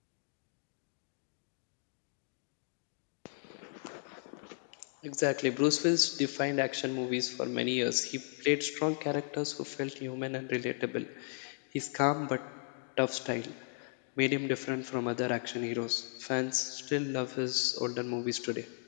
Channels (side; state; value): right; silent; 54 dB below the other